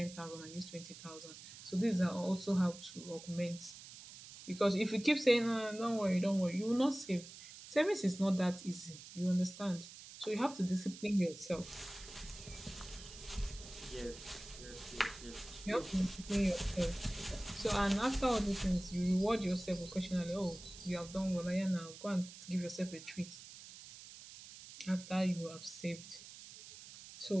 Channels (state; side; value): noise; right; hiss, 15 dB below the sound